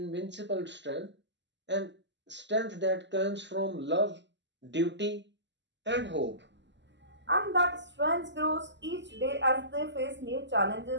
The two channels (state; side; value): late; left; 0.52 ms